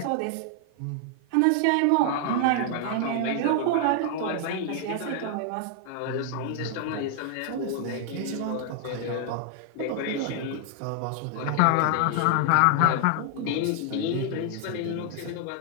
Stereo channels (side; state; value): both; different; correlation 0.00